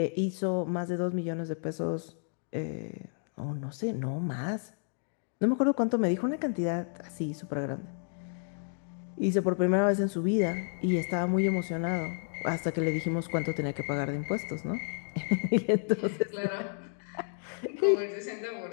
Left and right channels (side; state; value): right; silent; 56 dB below the other